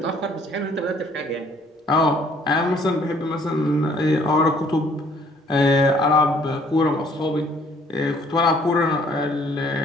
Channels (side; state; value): both; normal; correlation 0.61